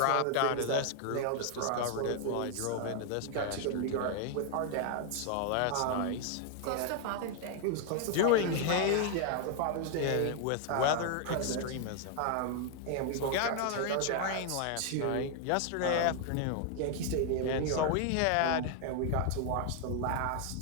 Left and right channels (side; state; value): both; different; correlation 0.00